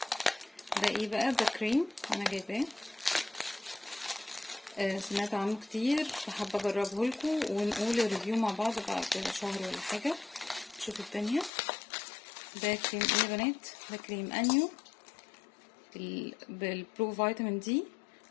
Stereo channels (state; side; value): drops out; right; at 11.5 s